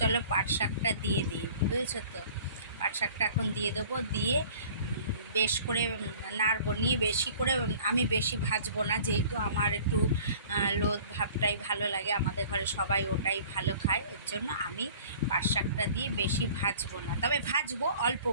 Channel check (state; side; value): inverted; both; correlation -0.48